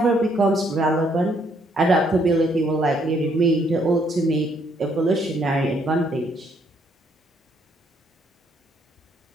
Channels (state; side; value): normal; both; correlation 0.69